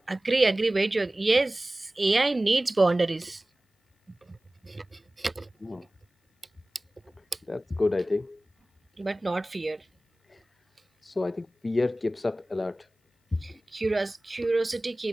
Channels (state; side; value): normal; both; correlation 0.97